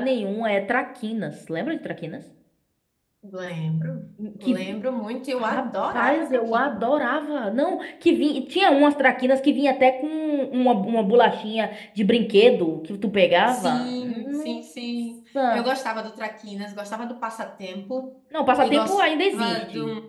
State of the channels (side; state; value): both; identical; correlation 1.00